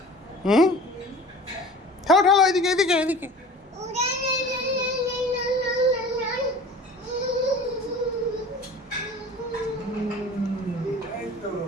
হুম, ঠেলো ঠেলো, এদিকে এদিকে এদিকে। এই তো।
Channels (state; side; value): normal; both; correlation 0.42